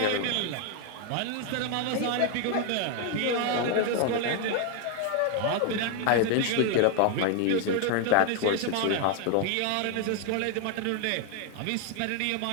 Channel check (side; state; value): both; different; correlation 0.00